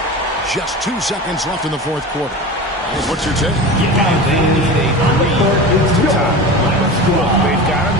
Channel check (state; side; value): normal; both; correlation 0.30